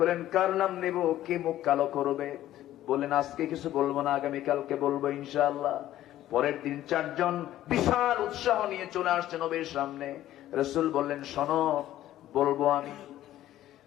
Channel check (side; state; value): right; quieter; 13.5 dB